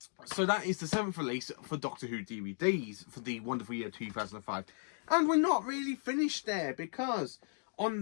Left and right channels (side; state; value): right; silent; 54 dB below the other